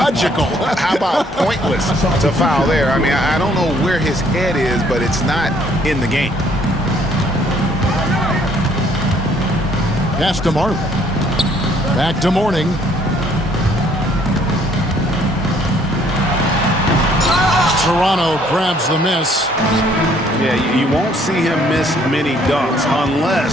How about pointless to foul there? I mean, I don't know where his head is, but it's not in the game. Pass to Marley. Back to Mourning. Toronto grabs the miss. Yeah, you won't see him miss many dunks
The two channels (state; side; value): normal; both; correlation 0.63